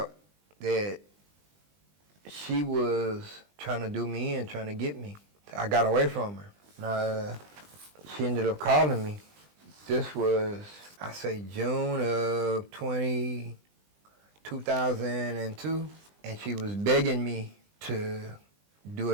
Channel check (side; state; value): left; late; 20 ms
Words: that she was trying to do me in, trying to get me. I got away from her. Now, she ended up calling me. This was, I say, June of 2002, and she was begging me to do